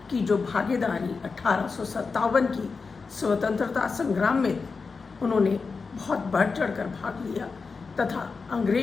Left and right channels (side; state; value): right; quieter; 4.7 dB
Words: की जो भागीदारी 1857 की स्वतंत्रता संग्राम में उन्होंने बहुत बढ़ चढ़कर भाग लिया तथा